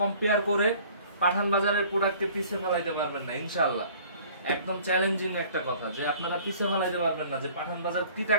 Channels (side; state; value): both; inverted; correlation -0.51